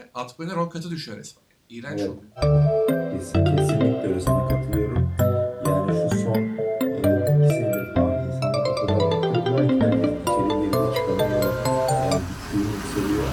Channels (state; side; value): identical; both; correlation 1.00